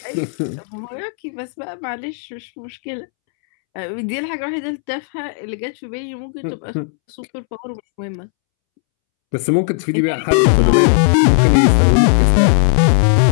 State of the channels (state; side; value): silent; right; 69 dB below the other